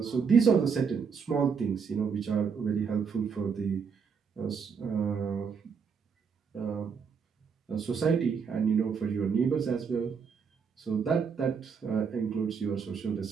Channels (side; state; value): left; quieter; 6.1 dB